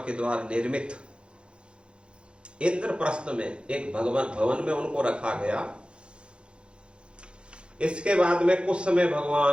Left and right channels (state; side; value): late; left; 0.056 ms